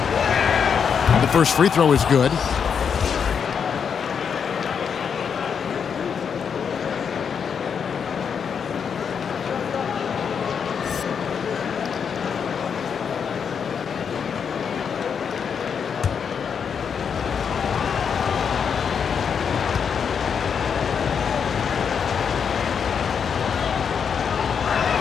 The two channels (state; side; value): quieter; right; 6.9 dB